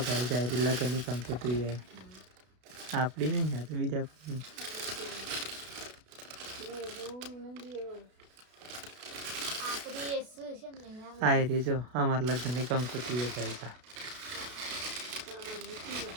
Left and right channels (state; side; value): late; left; 32 ms